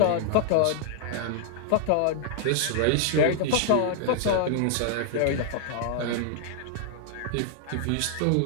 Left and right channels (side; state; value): both; different; correlation -0.01